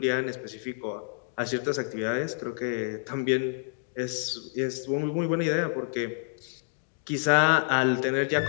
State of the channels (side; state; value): right; silent; digital silence